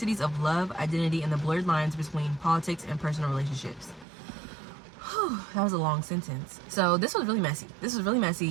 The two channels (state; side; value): drops out; left; at 4.0 s